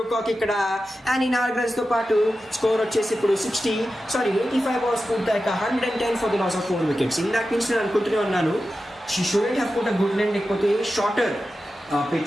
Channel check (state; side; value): normal; both; correlation 0.92